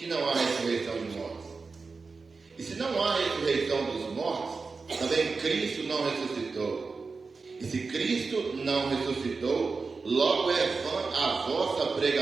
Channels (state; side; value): quieter; left; 4.4 dB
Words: não há ressurreição de mortos? E se não há ressurreição dos mortos, também Cristo não ressuscitou. E se Cristo não ressuscitou, logo é vã a vossa